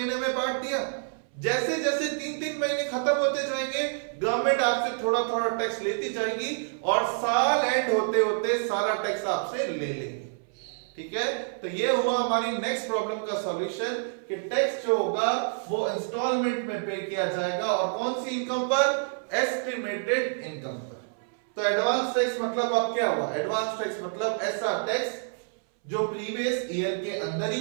में बांट दिया। जैसे जैसे 3-3 महीने खत्म होते जाएंगे, गवर्नमेंट आपसे थोड़ा थोड़ा टैक्स लेती जाएगी और साल एंड होते होते सारा टैक्स आपसे ले लेंगे। ठीक है, तो ये हुआ हमारी नेक्स्ट प्रॉब्लम का सॉल्यूशन कि टैक्स जो होगा वो इंस्टॉलमेंट में पे किया जाएगा, और कौन सी इनकम पर, एस्टिमेटेड इनकम पर। तो एडवांस टैक्स मतलब अब क्या हुआ, एडवांस टैक्स मतलब ऐसा टैक्स जो प्रीवियस ईयर के अंदर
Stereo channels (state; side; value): silent; left; 60 dB below the other